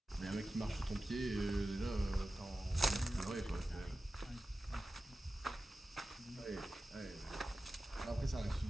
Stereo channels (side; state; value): both; normal; correlation 0.94